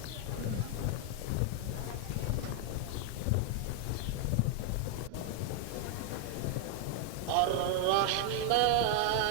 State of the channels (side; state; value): both; different; correlation 0.00